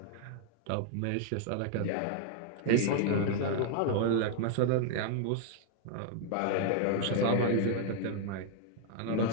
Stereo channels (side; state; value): both; different; correlation 0.00